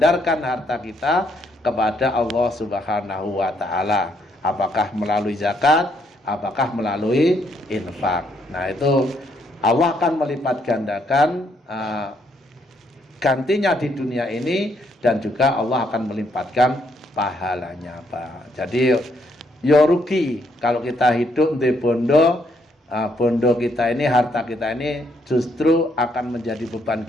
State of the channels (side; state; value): both; normal; correlation 0.72